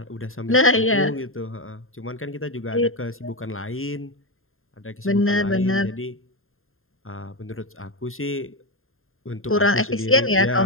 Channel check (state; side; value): late; right; 0.61 ms